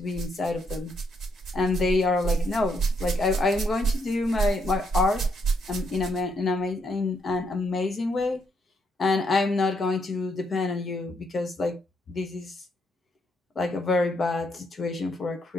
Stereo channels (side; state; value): both; normal; correlation 0.75